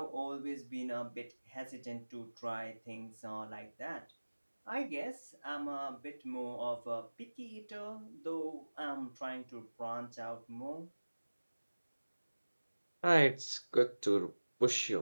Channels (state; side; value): inverted; both; correlation -1.00